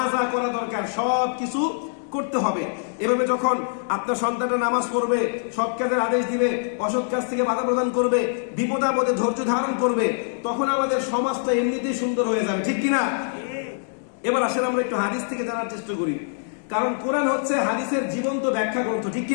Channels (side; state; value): right; silent; digital silence